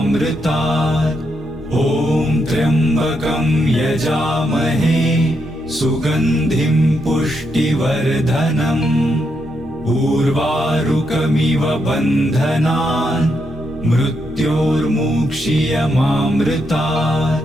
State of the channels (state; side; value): normal; both; correlation 0.80